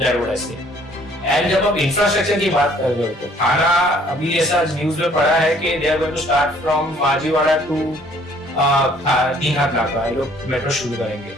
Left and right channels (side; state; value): both; normal; correlation 0.59